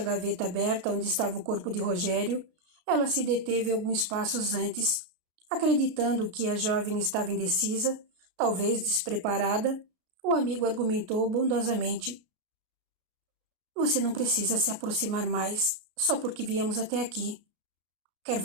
gaveta aberta onde estava o corpo de Rogério, ela se deteve alguns passos antes, acreditando que a jovem estava indecisa, talvez despreparada. O amigo argumentou bondosamente. Você não precisa se aproximar mais, só porque viemos até aqui. Quer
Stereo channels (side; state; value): left; late; 33 ms